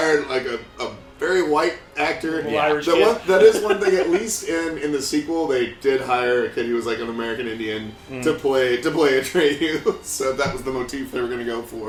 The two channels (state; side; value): identical; both; correlation 1.00